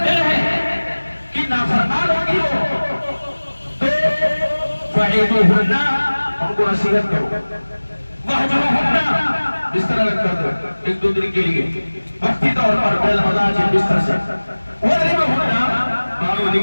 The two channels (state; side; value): inverted; both; correlation -1.00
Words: دل ہے کہ نافرمان ہوگی وہ تو فَعِدُوهُنَّ، ان کو نصیحت کرو، وَحْجُرُوهُنَّ، بستر الگ کر دو ایک دو دن کے لیے وقتی طور پر بالمضاجع بستر سے، وَضْرِبُوهُنَّ، مانو